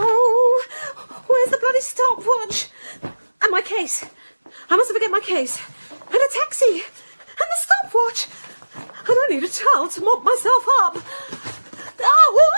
where's the bloody stopwatch? And my case. I mustn't forget my case. And a taxi. And the stopwatch. And I need a towel to mop myself up. Oh,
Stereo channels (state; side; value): inverted; both; correlation -1.00